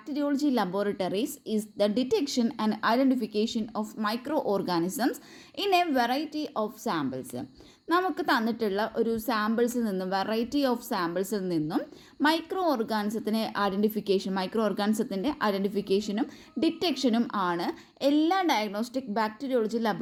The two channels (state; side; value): identical; both; correlation 1.00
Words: laboratories is the detection and identification of microorganisms in a variety of samples. നമുക്ക് തന്നിട്ടുള്ള ഒരു സാമ്പിൾസിൽ നിന്നും വെറൈറ്റി ഓഫ് സാമ്പിൾസിൽ നിന്നും മൈക്രോ ഓർഗാനിസത്തിൻ്റെ ഐഡൻറ്റിഫിക്കേഷനും ഡിറ്റക്ഷനും ആണ് എല്ലാ ഡയഗ്നോസ്റ്റിക് ബാക്ടീരിയോളജി